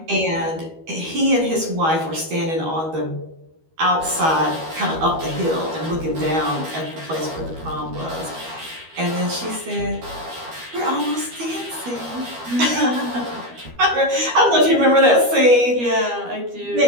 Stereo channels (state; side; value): late; left; 12 ms